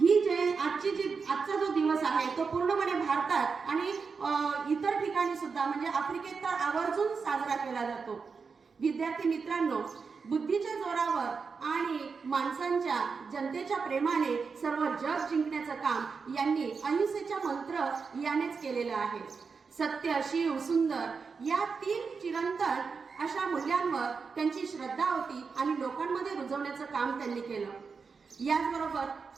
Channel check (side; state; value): left; quieter; 5.2 dB